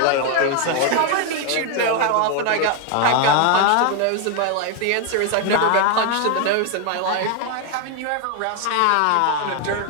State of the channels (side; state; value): both; different; correlation 0.01